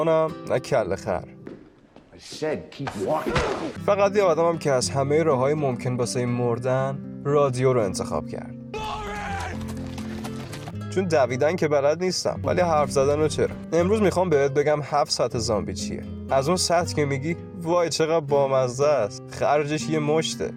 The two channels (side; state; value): both; identical; correlation 1.00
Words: نه کله خر، فقط یه آدمم که از همه راههای ممکن واسه مردن رادیو رو انتخاب کرد. چون دویدن که بلد نیستم ولی حرف زدن رو چرا. امروز میخوام بهت بگم 7 سطح زامبی چیه. از اون سطح که میگی وای چقدر بامزه است، خرجش یه مشته،